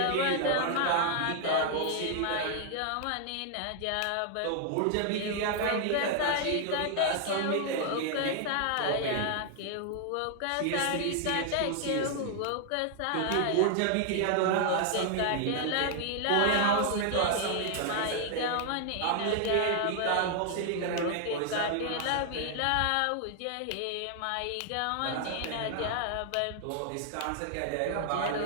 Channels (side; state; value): both; different; correlation 0.00